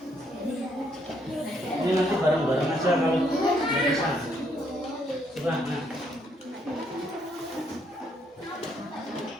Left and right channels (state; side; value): normal; both; correlation 0.72